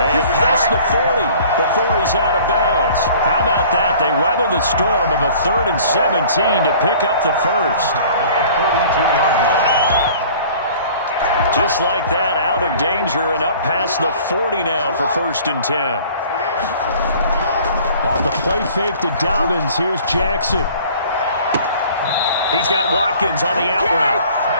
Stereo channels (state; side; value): inverted; both; correlation -0.49